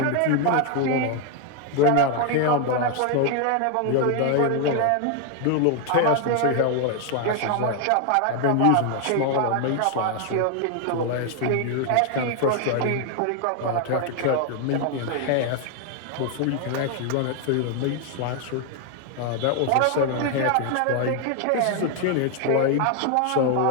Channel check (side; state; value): both; different; correlation 0.00